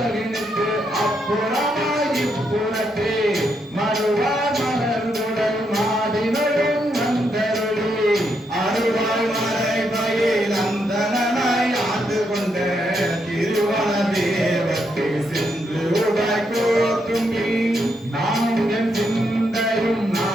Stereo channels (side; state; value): both; normal; correlation 0.79